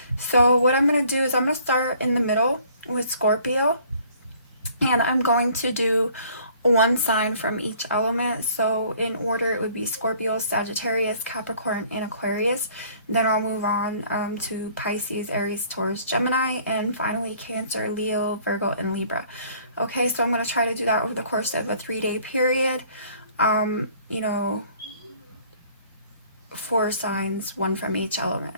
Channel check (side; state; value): both; inverted; correlation -0.57